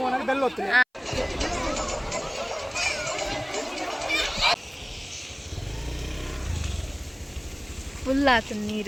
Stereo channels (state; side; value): identical; both; correlation 1.00